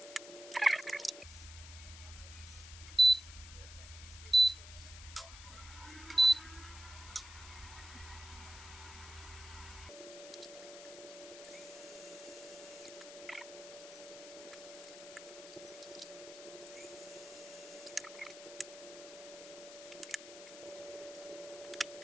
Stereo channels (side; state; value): left; noise; hiss, 14 dB below the sound